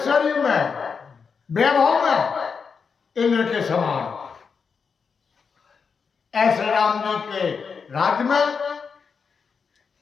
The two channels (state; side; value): quieter; right; 5.7 dB